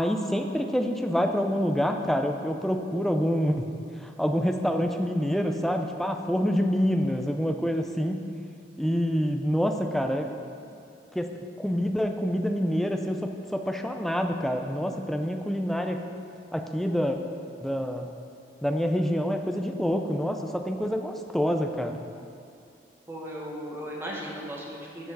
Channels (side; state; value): both; normal; correlation 0.89